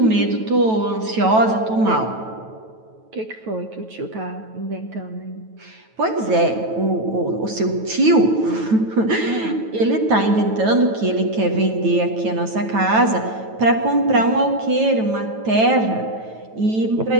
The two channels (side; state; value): left; late; 9.2 ms